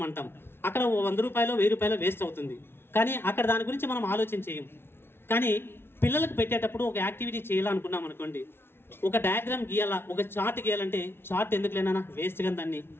అంటాం. అక్కడ 100 రూపాయలు 1000 రూపాయలు వేస్ట్ అవుతుంది. కానీ అక్కడ దాని గురించి మనం ఆలోచన చేయం. కానీ పిల్లలకు పెట్టేటప్పుడు ఒక యాక్టివిటీ చేయాలనుకున్నాం అనుకోండి, ఒక డయాగ్రామ్ గీయాలా, ఒక చార్ట్ గీయాలంటే చార్ట్ ఎందుకు లేనా, వేస్ట్ గా దాన్ని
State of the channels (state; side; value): late; right; 0.11 ms